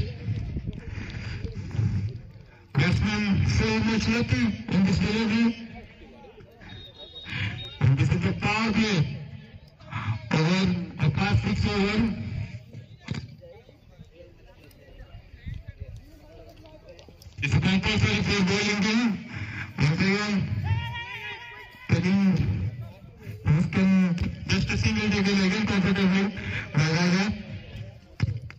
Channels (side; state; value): both; identical; correlation 1.00